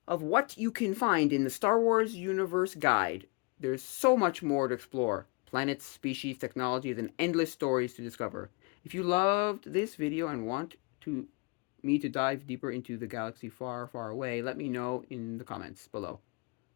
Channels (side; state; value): right; quieter; 29.5 dB